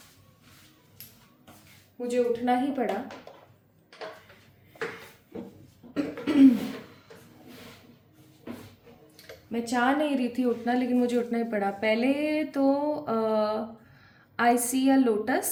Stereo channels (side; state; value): both; identical; correlation 1.00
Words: मुझे उठना ही पड़ा। मैं चाह नहीं रही थी उठना, लेकिन मुझे उठना ही पड़ा। पहले तो आई सी अ